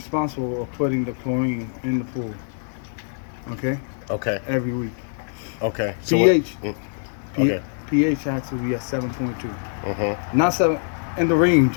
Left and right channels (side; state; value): right; silent; digital silence